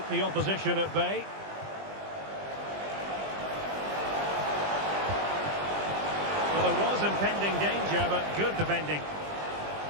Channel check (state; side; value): late; left; 20 ms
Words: the opposition at bay. was impending danger, but good defending.